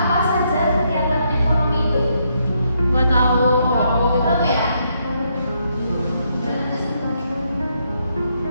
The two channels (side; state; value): both; inverted; correlation -0.76